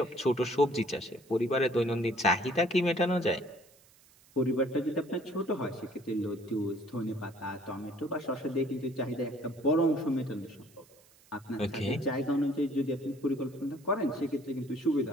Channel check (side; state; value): right; noise; hiss, 28 dB below the sound